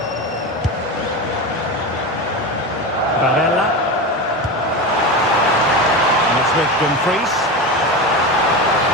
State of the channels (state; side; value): normal; both; correlation 0.22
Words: Barella. And it's with Dumfries.